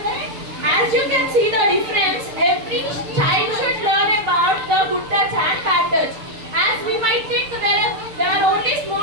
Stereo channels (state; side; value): late; left; 6.7 ms